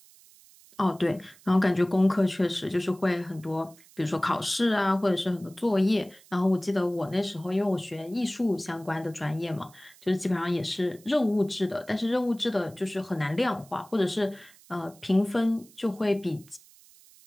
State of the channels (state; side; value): noise; right; hiss, 25 dB below the sound